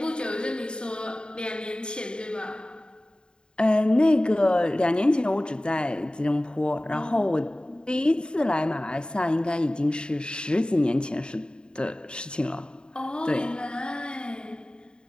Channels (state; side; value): late; right; 0.049 ms